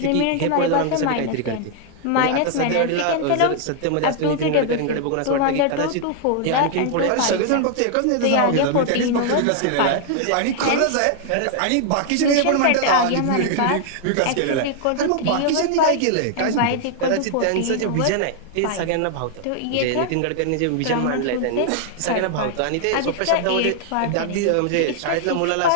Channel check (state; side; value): different; both; correlation 0.00